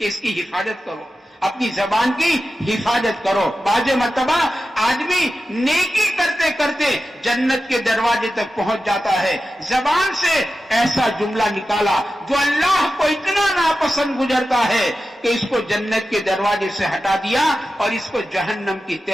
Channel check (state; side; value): normal; both; correlation 0.93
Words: کی حفاظت کرو، اپنی زبان کی حفاظت کرو. بعض مرتبہ آدمی نیکی کرتے کرتے جنت کے دروازے تک پہنچ جاتا ہے. زبان سے ایسا جملہ نکالا جو اللہ کو اتنا ناپسند گزرتا ہے کہ اس کو جنت کے دروازے سے ہٹا دیا اور اس کو جہنم کی